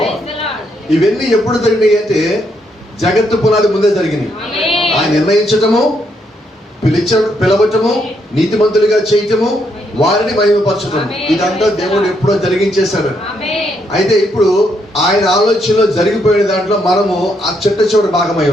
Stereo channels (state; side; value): normal; both; correlation 0.76